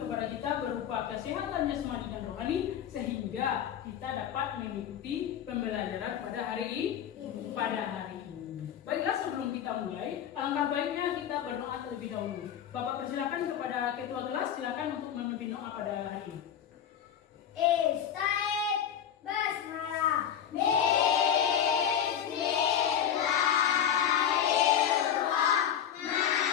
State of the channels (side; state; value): right; quieter; 9.3 dB